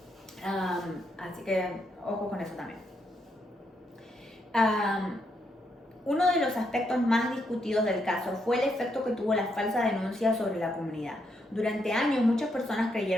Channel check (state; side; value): normal; both; correlation 0.78